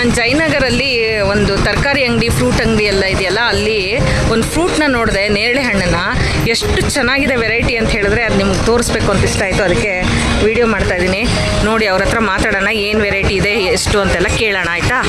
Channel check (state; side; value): identical; both; correlation 1.00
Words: ಜಯನಗರಲ್ಲಿ ಒಂದು ತರಕಾರಿ ಅಂಗಡಿ, ಫ್ರೂಟ್ ಅಂಗಡಿ ಎಲ್ಲ ಇದೆಯಲ್ಲ, ಅಲ್ಲಿ ಒಂದು ಫ್ರೂಟ್ನ ನೋಡಿದೆ, ನೇರಳೆ ಹಣ್ಣನ್ನು. ಎಷ್ಟು ಚೆನ್ನಾಗಿದೆ ವೆರೈಟಿ ಅಂತ ಹೇಳಿದ್ರೆ ಅದು ನಿಮ್ಗೆ ತೋರಿಸ್ಬೇಕು ಅಂತ ಇಷ್ಟ ಆಯಿತು, ಅದಕ್ಕೆ ವಿಡಿಯೋ ಮಾಡ್ತಾಯಿದ್ದೀನಿ. ನೋಡಿ, ಅವ್ರ ಹತ್ರ ಮಾತಾಡೋಣ, ಏನು ವೆರೈಟಿ ಇದೆ, ಎಷ್ಟು ಅಂತೆಲ್ಲ ಕೇಳೋಣ, ಆಯಿತಾ?